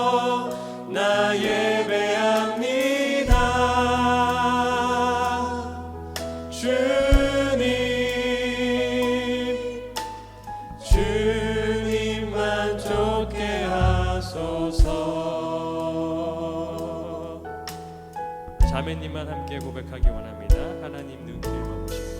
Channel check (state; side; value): identical; both; correlation 1.00